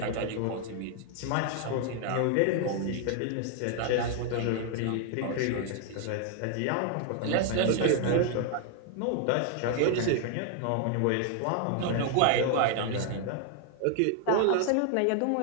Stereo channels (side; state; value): both; different; correlation 0.00